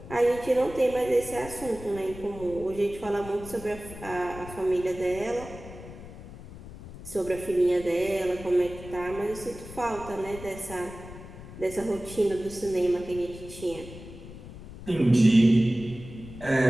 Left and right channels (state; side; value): noise; left; rumble, 14 dB below the sound